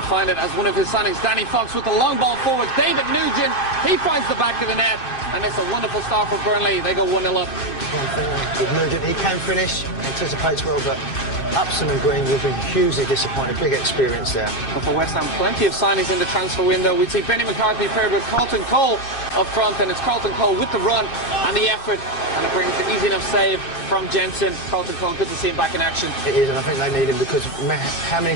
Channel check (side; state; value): right; late; 7.5 ms